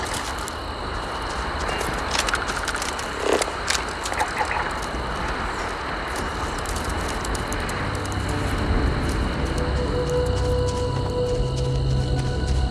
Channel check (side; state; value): both; identical; correlation 1.00